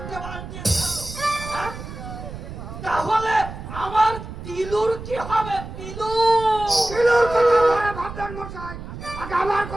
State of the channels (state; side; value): noise; right; rumble, 11 dB below the sound